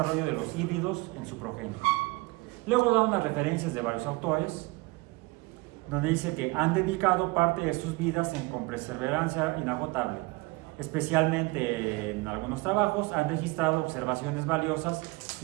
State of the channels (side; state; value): left; quieter; 24.3 dB